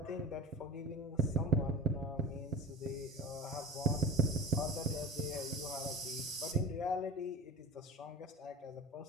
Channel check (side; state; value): both; normal; correlation 0.31